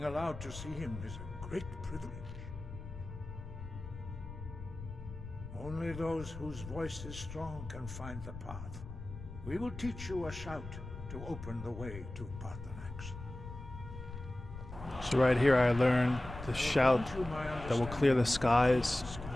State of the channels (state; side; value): noise; left; rumble, 11 dB below the sound